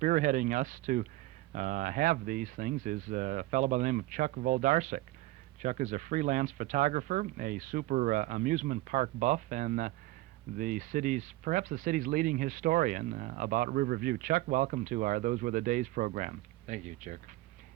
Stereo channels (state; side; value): quieter; left; 18.1 dB